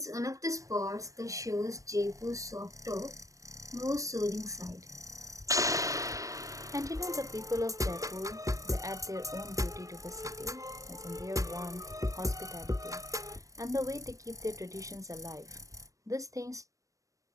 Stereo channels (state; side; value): late; left; 0.16 ms